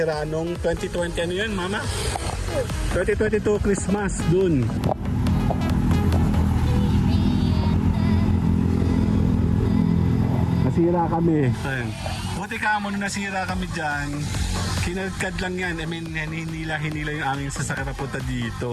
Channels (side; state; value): both; identical; correlation 1.00